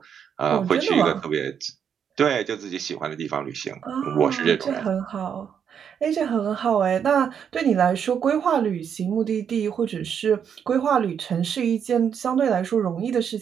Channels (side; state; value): left; quieter; 7.8 dB